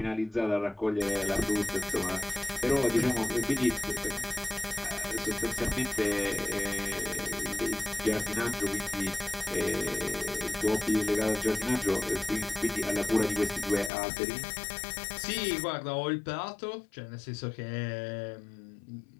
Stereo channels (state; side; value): drops out; right; at 13.9 s